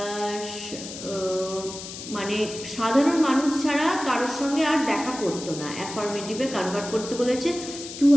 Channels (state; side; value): noise; left; hiss, 11 dB below the sound